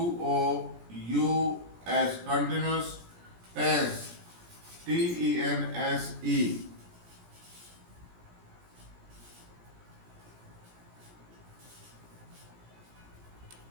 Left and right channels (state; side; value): late; left; 17 ms